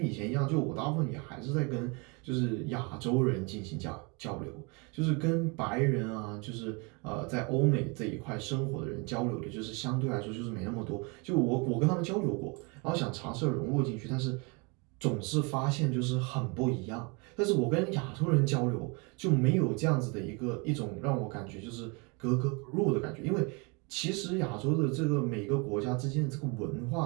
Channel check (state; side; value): quieter; left; 30.6 dB